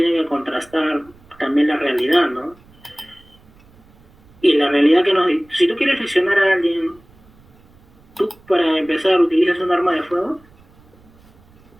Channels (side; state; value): right; noise; rumble, 28 dB below the sound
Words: que contrastar también la realidad, ¿no? Y la realidad que nos... Si tú quieres lesionar a alguien, ¿tú para empezar utilizas un arma de fuego?